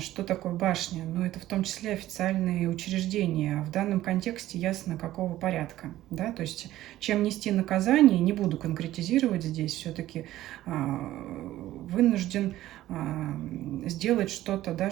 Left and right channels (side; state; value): left; quieter; 14.6 dB